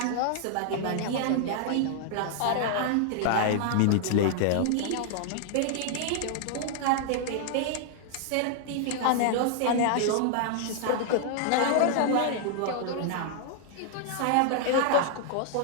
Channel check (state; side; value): different; both; correlation 0.00